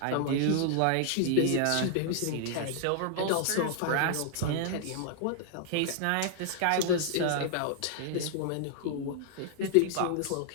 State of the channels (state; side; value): different; both; correlation -0.01